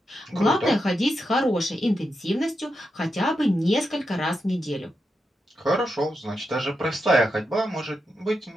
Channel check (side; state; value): both; normal; correlation 0.86